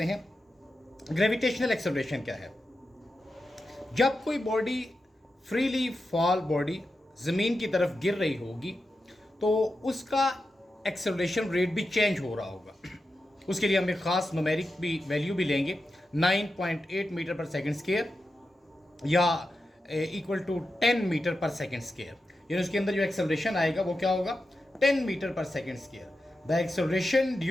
हैं ग्रेविटेशनल एक्सेलरेशन क्या है। जब कोई बॉडी फ्रीली फॉल बॉडी ज़मीन की तरफ गिर रही होगी, तो उसका एक्सेलरेशन रेट भी चेंज हो रहा होगा। उसके लिए हम एक ख़ास न्यूमेरिक भी वैल्यू भी लेंगे, 9.8 मीटर पर सेकेंड स्क्वायर, या इक्वल टू 10 मीटर पर सेकेंड स्क्वायर, यानी उसके अंदर जो एक्सेलरेशन आएगा वो क्या होगा, 10 मीटर पर second square. The acceleration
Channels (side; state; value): both; normal; correlation 0.90